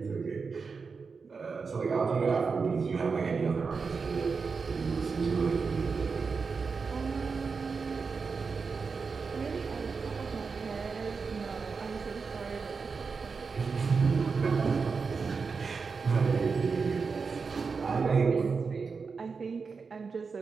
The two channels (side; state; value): left; quieter; 5.0 dB